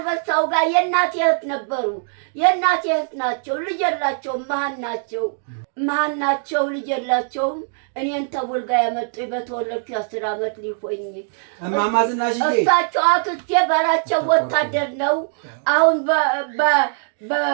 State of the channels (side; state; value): left; silent; digital silence